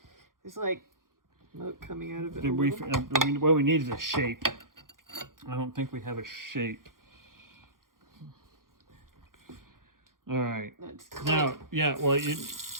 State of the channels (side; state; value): left; late; 0.91 ms